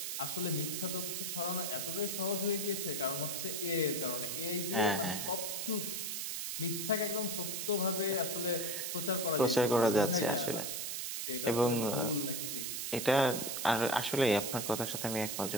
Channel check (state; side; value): noise; right; hiss, 3 dB below the sound